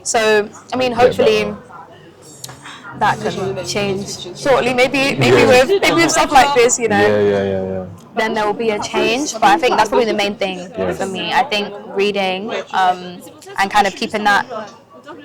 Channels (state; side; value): identical; both; correlation 1.00